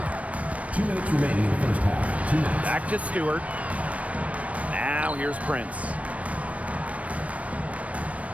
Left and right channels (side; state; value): left; late; 0.066 ms